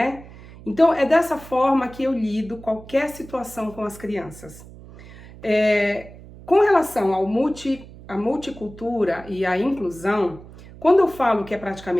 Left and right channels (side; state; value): right; noise; hum, 18 dB below the sound